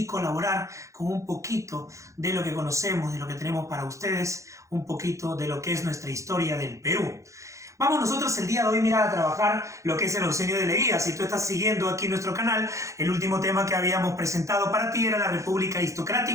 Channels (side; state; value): left; late; 0.15 ms